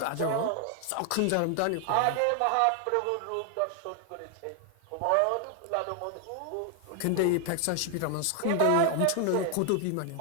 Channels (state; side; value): different; both; correlation 0.00